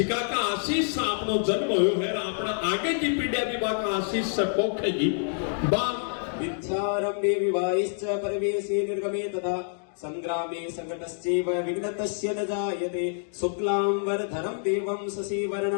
का आशीष से आपनो जन्म होयो है अपना आगे की पीढ़िया भी बाका आशीष से पोखेगी बा विद्यारंभे विवाहिश्च परवेशे निर्गमे तथा संग्रामे संकटश्चैव विघ्नतस्य न जायते शुक्लांबरधरं देवं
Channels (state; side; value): silent; right; digital silence